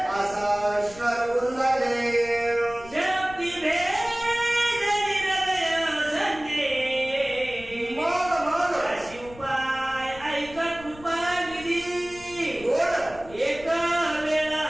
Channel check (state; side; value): noise; left; rumble, 19 dB below the sound